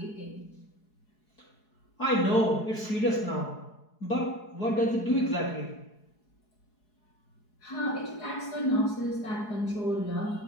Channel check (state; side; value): late; right; 4.7 ms